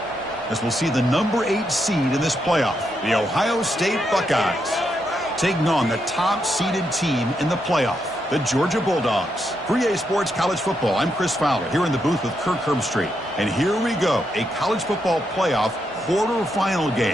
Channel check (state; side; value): normal; both; correlation 0.81